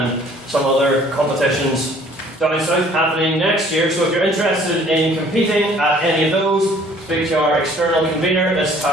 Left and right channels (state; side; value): normal; both; correlation 0.56